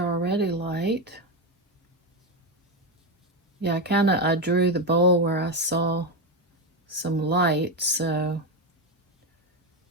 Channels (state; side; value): normal; both; correlation 0.11